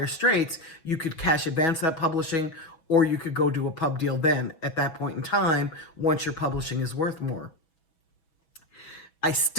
straits, you could cash advance that publishing, or you could go do a pub deal then at that point in time once your publishing is worth more. I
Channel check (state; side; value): late; right; 6.2 ms